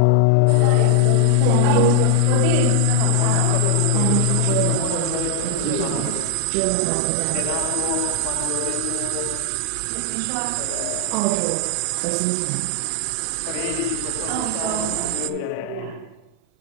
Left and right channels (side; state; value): both; different; correlation -0.01